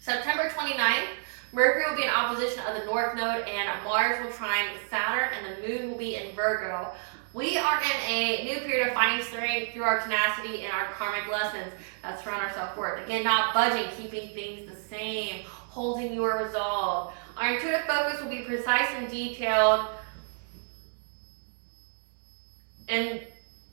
29th, Mercury will be in opposition of the North Node, and Mars will trine Saturn, and the Moon will be in Virgo. We are in a new period of finding strength through our tenacity and our karmic lessons that surround our self-worth. Again, not budging, keeping things the same, holding your resolve. Our intuitive focus will be precise and detailed.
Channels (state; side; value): silent; left; digital silence